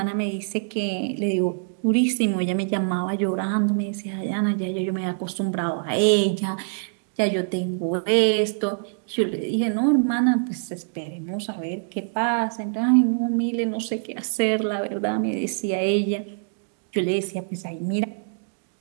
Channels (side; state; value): left; silent; digital silence